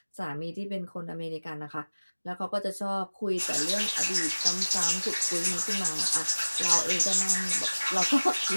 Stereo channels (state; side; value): inverted; both; correlation -1.00